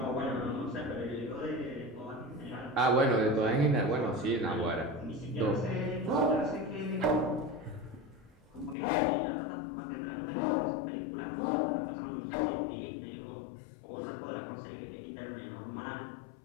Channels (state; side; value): drops out; right; at 8.8 s